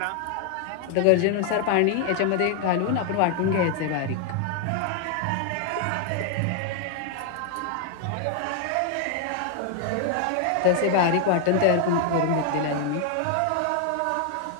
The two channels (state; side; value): different; both; correlation 0.00